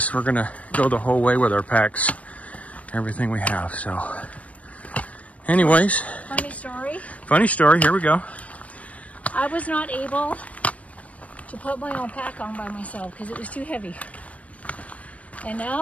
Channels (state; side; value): late; right; 0.066 ms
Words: We're gonna go the whole way with our packs, everything we have. So anyways, funny story, here we go. I was not able to put my own pack on by myself because it was too heavy. And